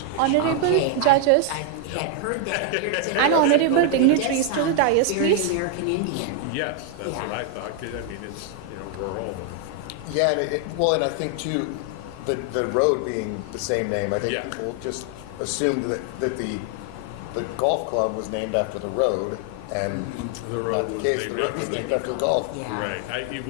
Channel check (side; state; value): both; different; correlation 0.00